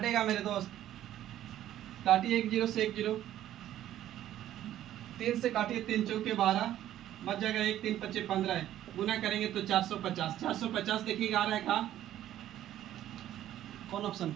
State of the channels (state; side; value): quieter; left; 12.4 dB